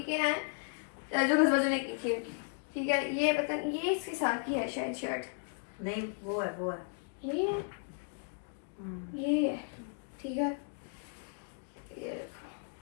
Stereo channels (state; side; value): silent; right; 54 dB below the other